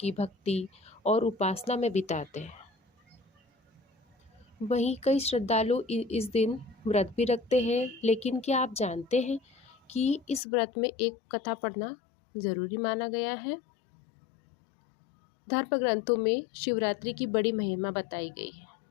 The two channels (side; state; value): right; drops out; at 10.4 s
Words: भक्ति और उपासना में बिताते हैं। वहीं कई श्रद्धालु इस दिन व्रत भी रखते हैं, लेकिन क्या आप जानते हैं कि इस व्रत में एक कथा पढ़ना ज़रूरी माना गया है। धर्म ग्रंथों में शिवरात्रि की बड़ी महिमा बताई गई है।